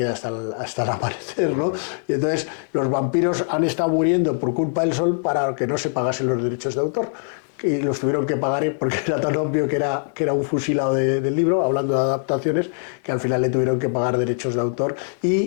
hasta el amanecer, ¿no? Y entonces los vampiros han estado muriendo por culpa del sol para que no se pagasen los derechos de autor. Y los tuvieron que pagar porque era tan obvio que era un fusilado del libro, hablando de adaptaciones, que al final le tuvieron que pagar derechos de autor.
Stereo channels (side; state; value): right; silent; digital silence